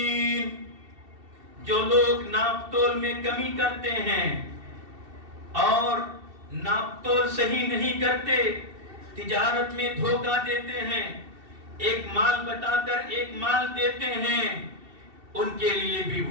جو لوگ ناپ تول میں کمی کرتے ہیں اور ناپ تول صحیح نہیں کرتے، تجارت میں دھوکہ دیتے ہیں، ایک مال بتا کر ایک مال دیتے ہیں، ان کے لیے بھی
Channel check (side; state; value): left; late; 2.7 ms